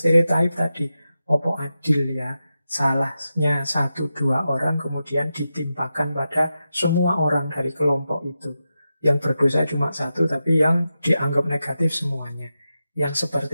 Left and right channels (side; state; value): both; inverted; correlation -0.90